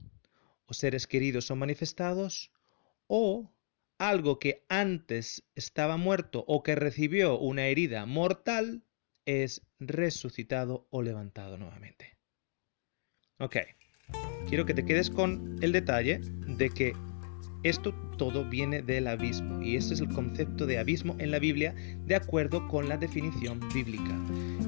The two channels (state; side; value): silent; right; digital silence